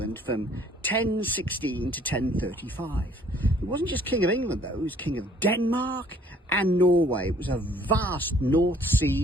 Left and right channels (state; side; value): normal; both; correlation 0.59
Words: from 1016 to 1035. He wasn't just King of England though, he was King of Denmark and Norway. It was a vast North